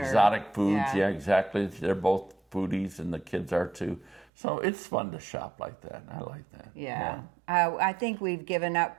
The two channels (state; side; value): drops out; left; at 4.2 s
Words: foods. Yeah, exactly. They're both foodies, and the kids are too. So it's fun to shop like that. I like that. Yeah. I think we've given up